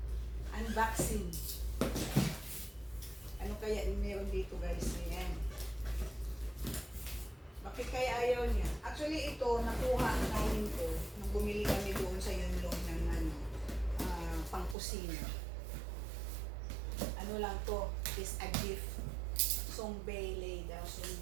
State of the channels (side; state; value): left; drops out; at 14.8 s